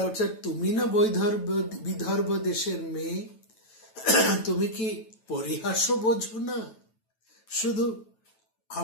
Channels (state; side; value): late; right; 9.1 ms